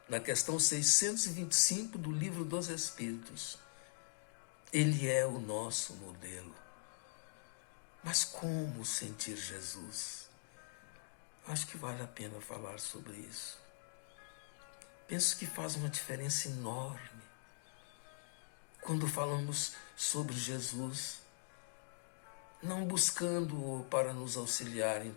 na questão 625 do Livro dos Espíritos. Ele é o nosso modelo. Mas como sentir Jesus? Acho que vale a pena falar sobre isso. Penso que faz uma diferença enorme quando falamos sobre Jesus, não buscando-o para nos auxiliar em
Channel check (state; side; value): silent; right; digital silence